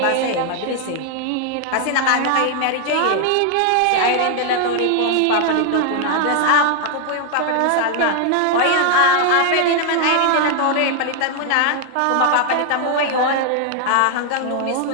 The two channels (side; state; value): both; different; correlation 0.00